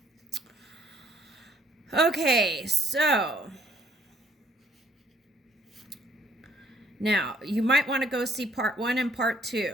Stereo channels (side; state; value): both; normal; correlation 0.65